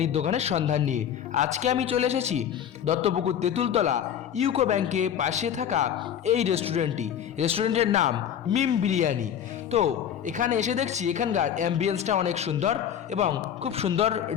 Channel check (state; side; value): quieter; right; 9.3 dB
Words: দোকানের সন্ধান নিয়ে। আজকে আমি চলে এসেছি দত্তপুকুর তেঁতুলতলা ইউকো ব্যাংকের পাশে থাকা এই রেস্টুরেন্টের নাম মিম বিরিয়ানি। তো এখানে এসে দেখছি এখানকার অ্যাম্বিয়েন্সটা অনেক সুন্দর এবং খুব সুন্দর